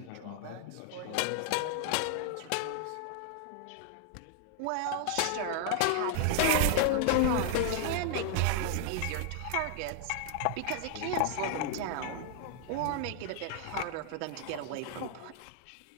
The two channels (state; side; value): different; both; correlation 0.00